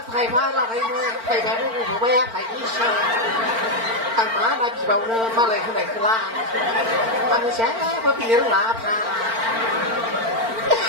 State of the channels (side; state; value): left; late; 4.4 ms